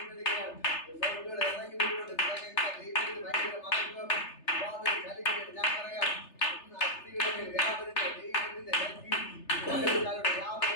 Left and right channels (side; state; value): right; late; 3.3 ms